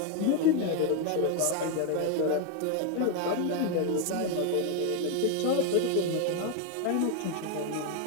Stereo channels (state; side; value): different; both; correlation 0.01